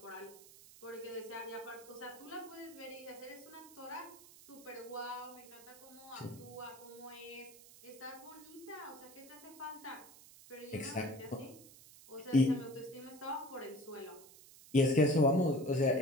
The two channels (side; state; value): right; noise; hiss, 19 dB below the sound